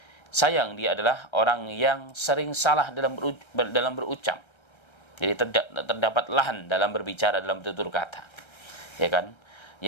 sayang dia adalah orang yang sering salah dalam berucap. Jadi terdapat lahan dalam berbicara, dalam tutur kata. Ya kan?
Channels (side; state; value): right; late; 1.3 ms